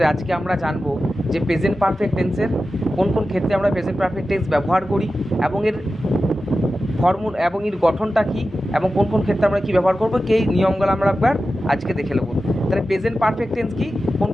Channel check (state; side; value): normal; both; correlation 0.93